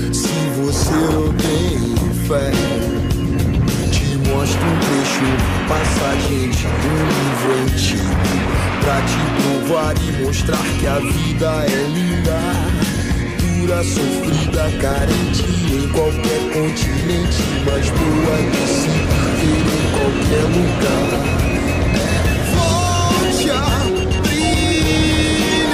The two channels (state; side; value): identical; both; correlation 1.00